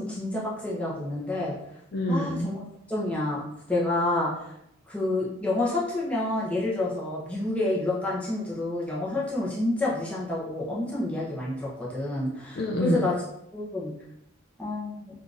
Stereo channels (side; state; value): both; normal; correlation 0.63